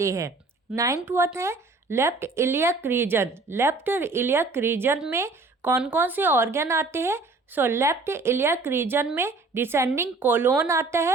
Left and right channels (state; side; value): quieter; left; 3.6 dB